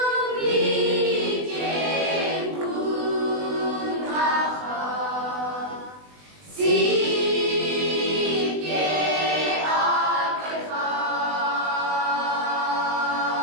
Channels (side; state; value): left; late; 20 ms